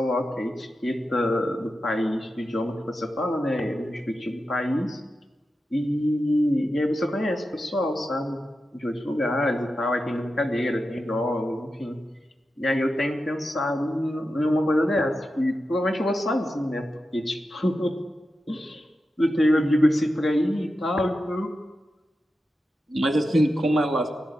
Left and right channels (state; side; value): normal; both; correlation 0.90